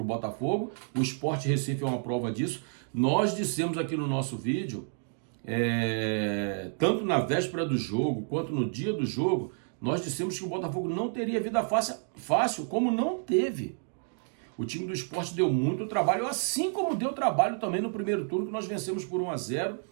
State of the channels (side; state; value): left; silent; 58 dB below the other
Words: o Botafogo. O Sport Recife é uma prova disso. Nós dissemos aqui no nosso vídeo, tanto na véspera do jogo quanto no dia do jogo, nós dissemos que o Botafogo não teria vida fácil, como não teve. O time do Sport deu muito trabalho, assim como deu trabalho também no primeiro turno, que nós vencemos por 1-0,